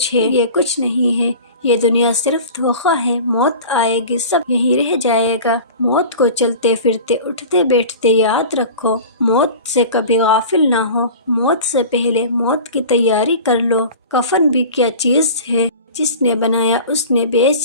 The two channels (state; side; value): inverted; both; correlation -0.37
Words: ہے۔ یہ کچھ نہیں ہے، یہ دنیا صرف دھوکہ ہے۔ موت آئے گی، سب یہیں رہ جائے گا۔ موت کو چلتے پھرتے اٹھتے بیٹھتے یاد رکھو، موت سے کبھی غافل نہ ہو۔ موت سے پہلے موت کی تیاری کر لو۔ کفن بھی کیا چیز ہے، جس نے بنایا اس نے